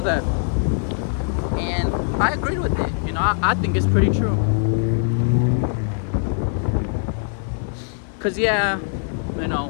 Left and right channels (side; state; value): right; silent; 59 dB below the other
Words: that and I agreed with it. I think it's pretty true. Cause